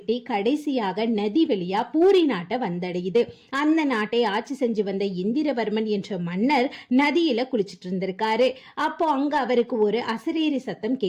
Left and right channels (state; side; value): identical; both; correlation 1.00